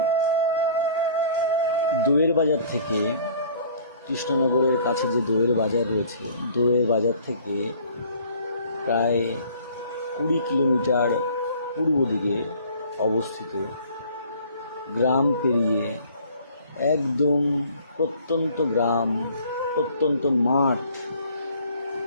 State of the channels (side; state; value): both; inverted; correlation -0.53